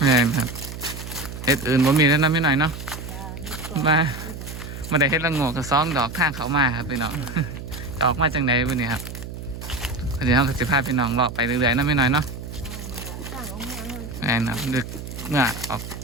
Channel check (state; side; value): noise; right; hum, 9 dB below the sound